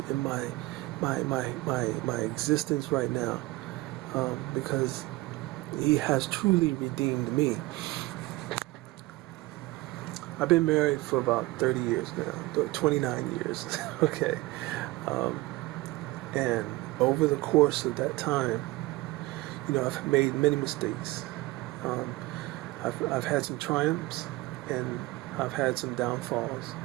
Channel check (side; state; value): left; quieter; 19.9 dB